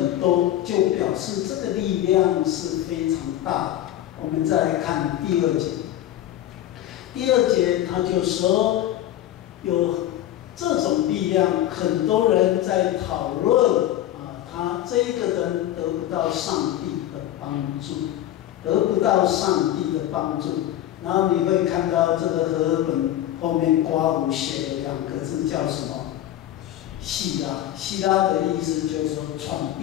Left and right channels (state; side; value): quieter; right; 12.8 dB